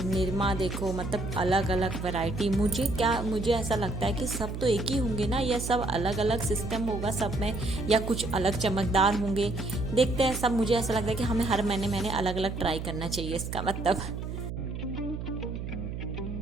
निरमा देखो, मतलब अलग अलग वैरायटी। मुझे ऐसा लगता है कि सब तो एक ही होंगे ना, या सब अलग अलग सिस्टम होगा सब में, या कुछ अलग चमकदार होंगे। देखते हैं सब। मुझे ऐसा लगता है कि हमें हर महीने अलग अलग ट्राई करना चाहिए, इसका मतलब।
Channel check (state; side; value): noise; right; hum, 6 dB below the sound